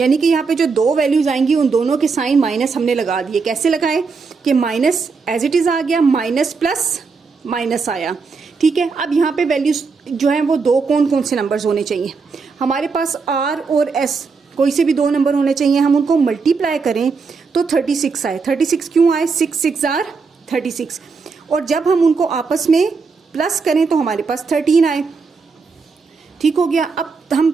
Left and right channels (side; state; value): left; quieter; 4.8 dB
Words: कि यहाँ पे जो दो वैल्यूज आएंगी उन दोनों के साइन माइनस हमने लगा दिए। कैसे लगाए कि माइनस एज इट इज आ गया, माइनस प्लस माइनस आया। ठीक है, अब यहाँ पे वैल्यूज जो है वो दो कौन कौन से नंबर्स होने चाहिए, हमारे पास r और s कोई से भी दो नंबर होने चाहिए। हम उनको मल्टीप्लाई करें तो 36 आए। 36 क्यों आए, 6 6 आर 36, और जब हम उनको आपस में प्लस करें तो हमारे पास 13 आए। ठीक हो गया। अब